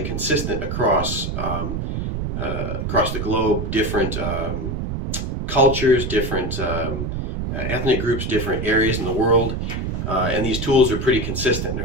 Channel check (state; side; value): noise; right; rumble, 3 dB below the sound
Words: consistent across across the globe, different cultures, different ethnic groups, different areas in the world, and these tools are pretty consistent,